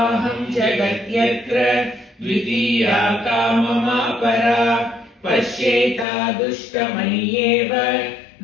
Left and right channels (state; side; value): drops out; right; at 6.1 s